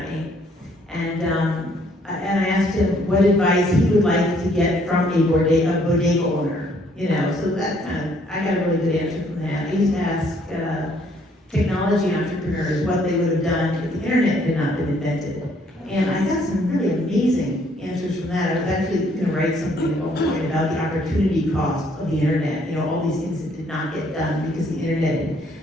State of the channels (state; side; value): normal; both; correlation 0.65